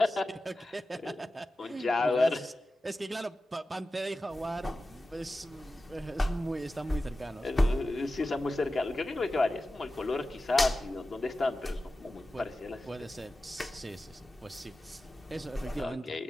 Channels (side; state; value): both; normal; correlation 0.94